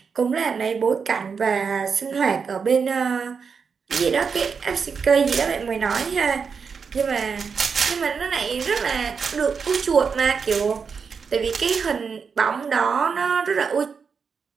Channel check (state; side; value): quieter; left; 5.8 dB